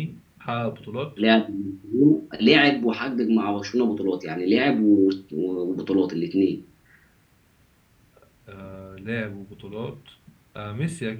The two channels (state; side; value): identical; both; correlation 1.00